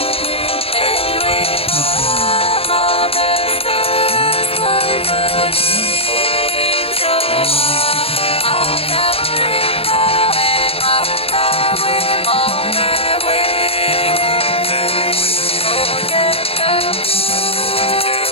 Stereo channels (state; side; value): late; right; 0.28 ms